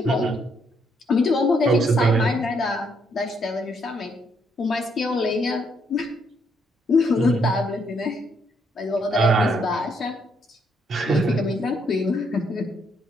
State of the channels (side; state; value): both; normal; correlation 0.73